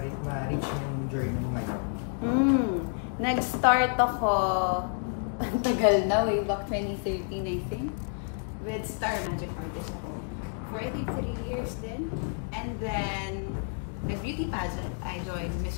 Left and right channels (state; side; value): silent; right; 58 dB below the other